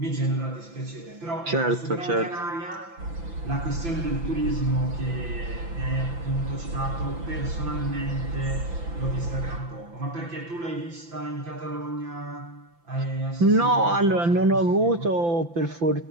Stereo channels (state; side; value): late; left; 5.9 ms